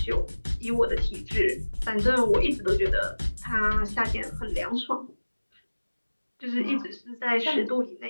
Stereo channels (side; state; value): both; inverted; correlation -1.00